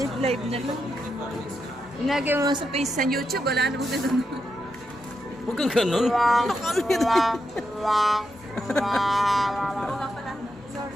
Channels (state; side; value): normal; both; correlation 0.84